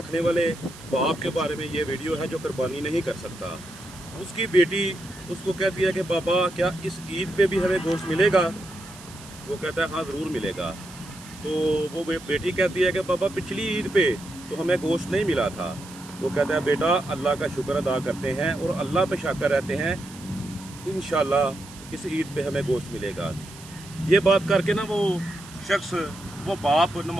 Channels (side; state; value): right; noise; hiss, 18 dB below the sound